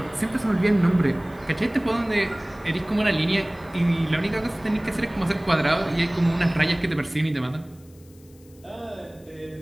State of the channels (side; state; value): left; noise; hiss, 29 dB below the sound